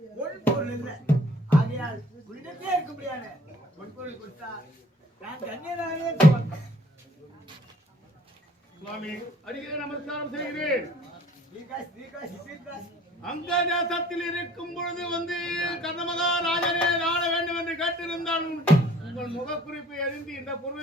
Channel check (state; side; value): normal; both; correlation 0.55